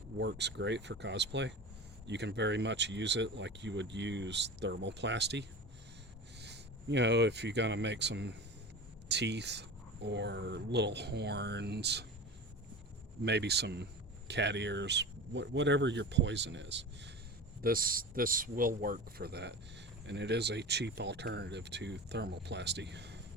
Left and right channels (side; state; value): both; normal; correlation 0.32